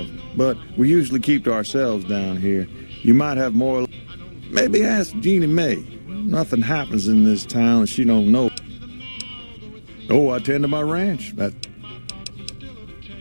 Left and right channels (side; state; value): both; inverted; correlation -1.00